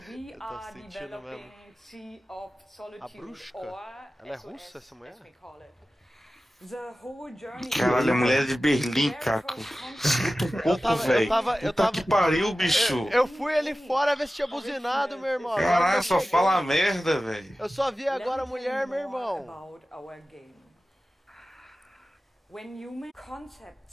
we are developing Sea of Solitude, or ela é russa, essa mulher? The whole journey. Caralho, a mulher de Berlim, Caco. Eu tava que pariu, bicho. Eu fui ali fora ver se tinha buzinado, meu irmão. Caralho, só fala merda, velho. Eu só vi agora a mulher, meu irmão. When human concept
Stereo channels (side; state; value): both; normal; correlation 0.95